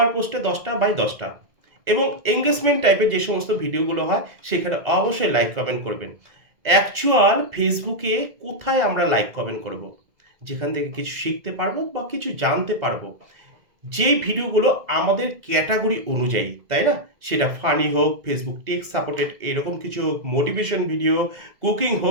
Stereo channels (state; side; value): late; left; 2.0 ms